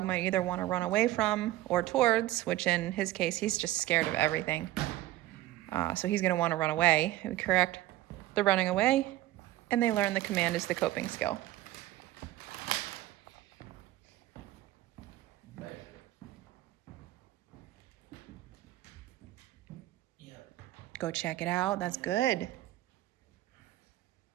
might either want to run away from or towards, which in his case, he's just scared of everything. So he's going to want to run away. We correct the running away, and they learn the command is the coping skill. Go check it out. That's good.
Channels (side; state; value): left; quieter; 15.7 dB